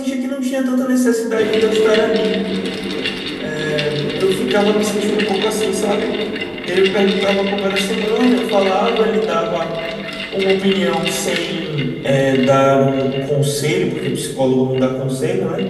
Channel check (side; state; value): both; identical; correlation 1.00